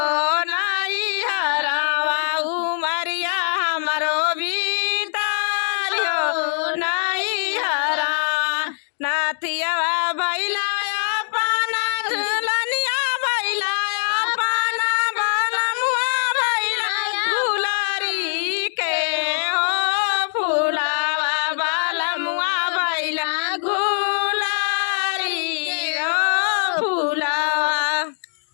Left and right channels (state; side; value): silent; right; digital silence